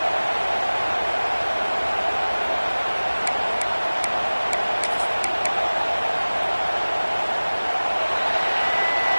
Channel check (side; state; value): both; inverted; correlation -1.00